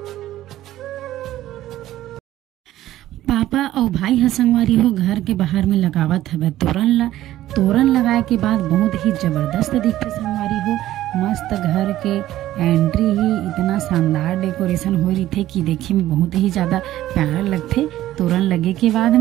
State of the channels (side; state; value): left; quieter; 14.1 dB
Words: पापा और भाई है संगवारी हो घर के बाहर में लगावत हवे तोरण लगाए के बाद बहुत ही जबरदस्त दिखते संगवारी हो। मस्त घर के एंट्री ही इतना शानदार डेकोरेशन हो रही थे कि देखे में बहुत ही ज़्यादा प्यारा लगते तोरण लगे के बाद